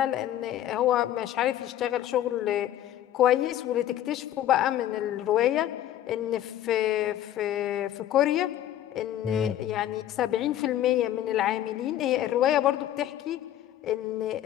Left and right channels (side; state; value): right; quieter; 12.2 dB